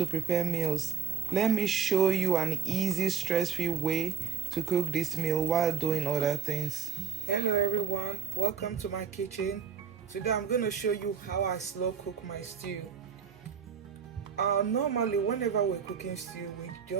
prepare meals. Let me show you an easy, stress-free way to cook this meal while doing other things. Hello everyone, welcome to my kitchen. Today I'm going to show you how I slow cook my stew. Normally whenever we're cooking stew, we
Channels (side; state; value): left; quieter; 7.3 dB